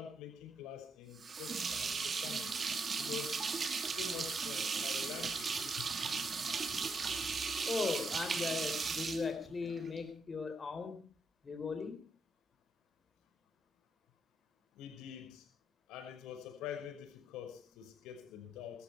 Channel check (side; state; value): both; normal; correlation 0.79